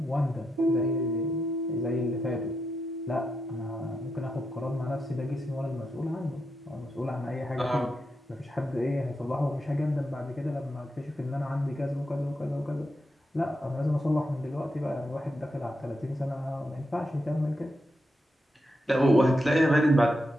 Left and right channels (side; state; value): both; normal; correlation 0.85